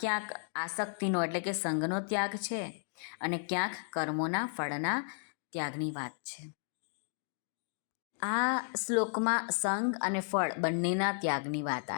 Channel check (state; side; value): silent; right; digital silence